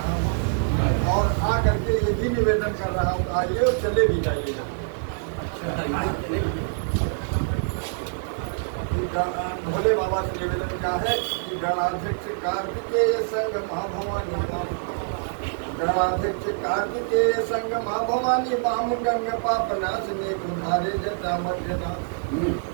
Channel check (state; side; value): silent; left; digital silence